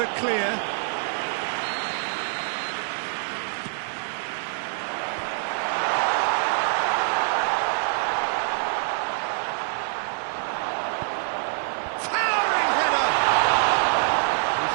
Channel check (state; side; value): silent; left; digital silence